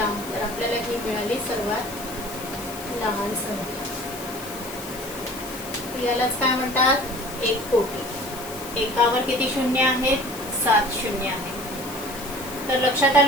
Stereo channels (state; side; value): noise; left; hiss, 13 dB below the sound